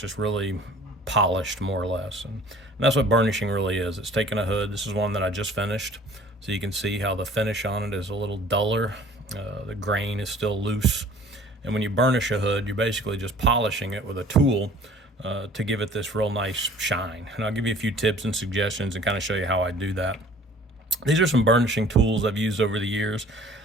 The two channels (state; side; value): normal; both; correlation 0.50